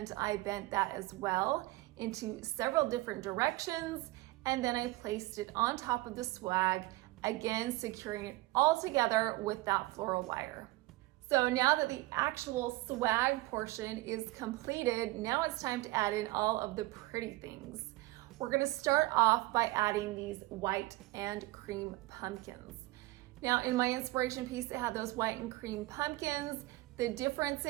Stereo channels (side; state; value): left; quieter; 20.1 dB